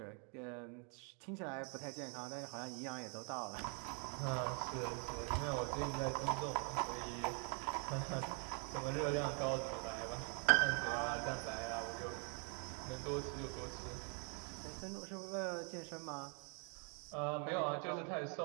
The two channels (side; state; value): left; quieter; 38.3 dB